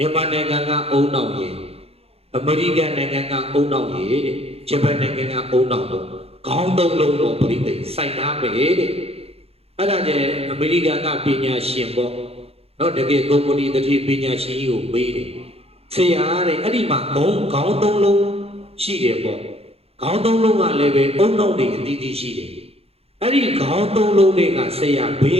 န်မာနိုင်ငံကအုံနောက်ရည်အမေရိကန်နိုင်ငံကအုံနောက်ရည်တဲ့ဂျပန်နိုင်ငံကအုံနောက်တော့ခေါင်းသုံးလုံးတော့ပရိသတ်စိုက်သားမယ်တဲ့အဲ့ဒါကျအမေရိကန်ကပညာရှင်ပေါ့နော်တကယ်ကုမ္ပဏီတတိပညာရှင်ကြီးကိုမေးတယ်ဆရာတဲ့အဲ့ဒီမှာခေါင်းသုံးလုံးရှိတယ်ပေါ့ခေါင်းသုံးလုံးကလည်းပဲအုံနောက်တွေအသီးသီးရှိတယ်အဲ့ဒီခေါင်းသုံးလုံးတွေကဆရာဘေ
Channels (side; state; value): left; late; 0.29 ms